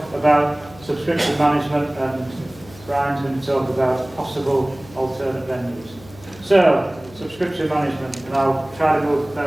about subscription management and Brian's going to talk about possible alternate venues. So, subscription management, and I'll try to move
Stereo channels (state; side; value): noise; left; hum, 21 dB below the sound